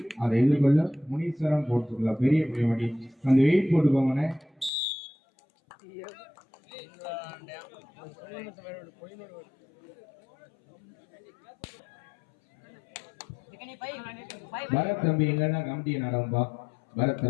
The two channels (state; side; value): drops out; right; at 4.7 s